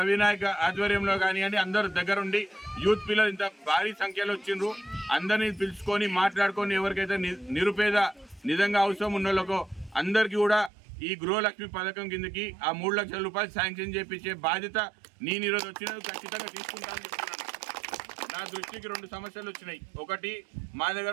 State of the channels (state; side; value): drops out; left; at 10.7 s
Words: ఆధ్వర్యంలో కానివ్వండి, అందరూ దగ్గరుండి యూత్ పిల్లలు ఇంత భారీ సంఖ్యలో వచ్చిండ్రు. అందరినీ పిలుచుకొని మాట్లాడుకొని ఎవరికైతే నిరుపేద నిజంగా అవసరం ఉన్న వాళ్ళకో అందరికీ కూడా ఈ గృహలక్ష్మి పథకం కిందకి ఆ 3 లక్షల రూపాయలు శాంక్షన్ చేపించే బాధ్యత నేను ఈరోజు వచ్చినది ఖచ్చితంగా తీసుకుంటానని చెప్తున్నాను. నా దృష్టికి 2 సమస్యలు వచ్చినాయి. ఒకటి, మా